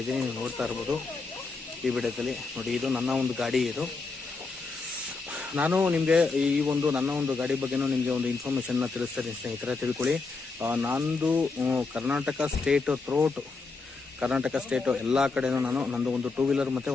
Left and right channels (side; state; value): right; quieter; 4.1 dB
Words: ನೀವು ನೋಡ್ತಾ ಇರ್ಬೋದು ಈ ವಿಡಿಯೋದಲ್ಲಿ. ನೋಡಿ, ಇದು ನನ್ನ ಒಂದು ಗಾಡಿ. ಇದು ನಾನು ನಿಮಗೆ ನನ್ನ ಒಂದು ಗಾಡಿ ಬಗ್ಗೆನೂ ನಿಮಗೆ ಒಂದು ಇನ್ಫಾರ್ಮೇಷನ್ನ ತಿಳಿಸ್ತೀನಿ ಸ್ನೇಹಿತರೆ, ತಿಳ್ಕೊಳ್ಳಿ. ನಂದು Karnataka state throughout Karnataka state ಎಲ್ಲ ಕಡೆನೂ ನಂದು ಒಂದು 2 ವೀಲರ್ ಮತ್ತು